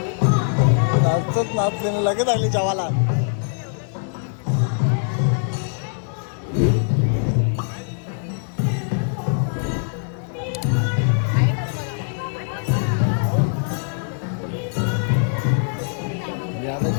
नाचत नाचलेलं लगेच आली जेवायला.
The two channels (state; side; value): silent; right; 64 dB below the other